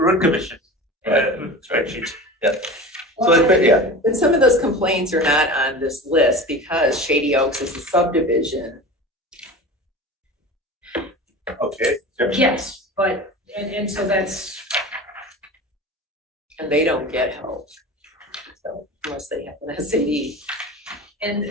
commission spreadsheet. So it's, yeah, But some of those complaints are not on this list because Shady Oaks is a subdivision. Okay. Yes, but, and so that's, and they don't get help. So unless they have an SAD.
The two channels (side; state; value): both; normal; correlation 0.33